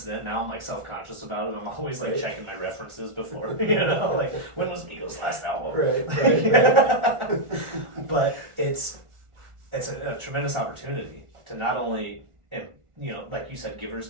then, now I'm like self-conscious about it. I'm always like checking my references before, you know, like when was Migos' last album? Right. But it's a tremendous opportunity to not only, you know, like you said, givers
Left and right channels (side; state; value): left; late; 1.4 ms